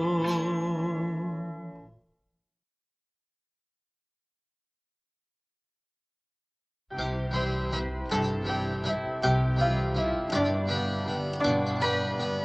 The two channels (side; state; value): both; identical; correlation 1.00